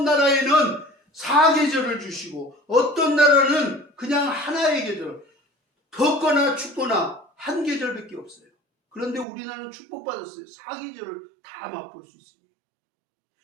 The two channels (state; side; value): drops out; left; at 9.2 s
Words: 나라에는 4계절을 주시고 어떤 나라는 그냥 하나의 계절, 덥거나 춥거나 한 계절밖에 없어요. 그런데 우리나라는 축복받았어요. 4계절을 다 맛볼 수 있습니다.